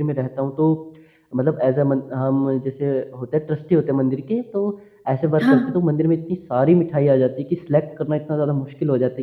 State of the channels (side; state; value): both; identical; correlation 1.00